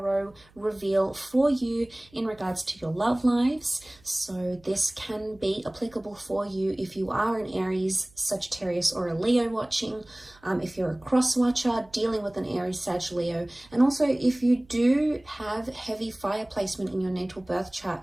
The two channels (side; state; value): right; noise; hum, 28 dB below the sound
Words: reveal for you in regards to your love lives? So this can be applicable for you if you are an Aries, Sagittarius, or a Leo watching, if you're a cross watcher dealing with an Aries, Sag, Leo, and also if you do have heavy fire placement in your natal birth chart,